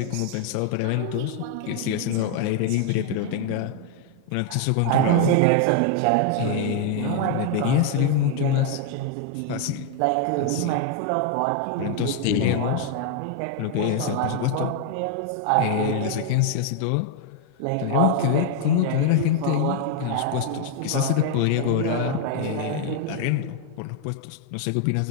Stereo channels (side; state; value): both; different; correlation 0.00